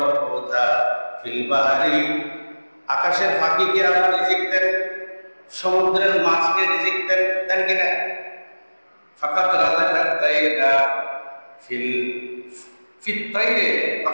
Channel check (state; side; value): inverted; both; correlation -1.00